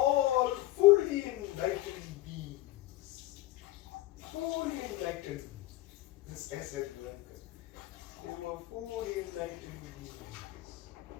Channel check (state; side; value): quieter; right; 16.6 dB